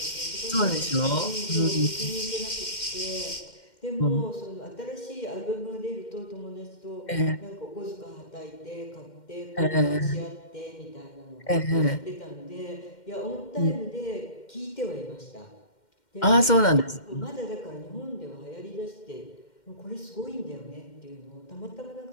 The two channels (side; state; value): right; late; 2.1 ms